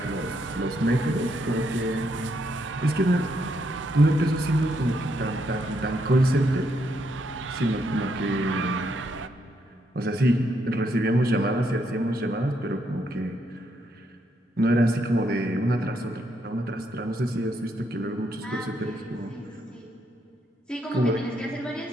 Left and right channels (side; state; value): both; normal; correlation 0.76